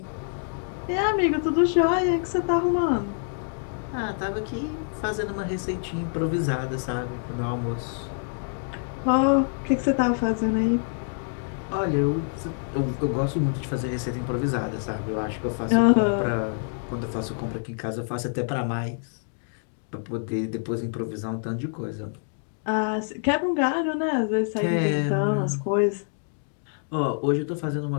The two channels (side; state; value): right; silent; digital silence